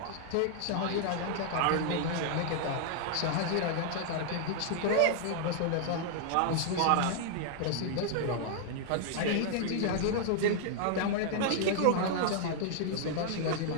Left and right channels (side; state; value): both; different; correlation 0.00